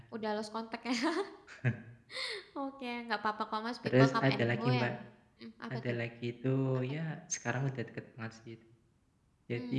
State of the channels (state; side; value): identical; both; correlation 1.00